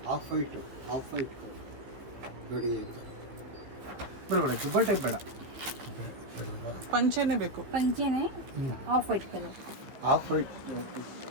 ಹಾಫ್ ವೈಟ್ ನೋಡಿ. ಬೇಡ ಟೈಪ್ ಬೇಡ, ಪಂಚೆನೇ ಬೇಕು. पंचे ने of white colour Half white.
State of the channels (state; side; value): late; left; 15 ms